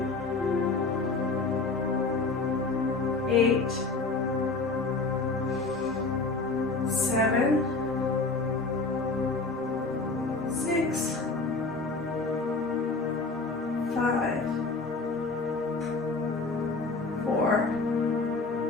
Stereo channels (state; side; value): quieter; right; 3.8 dB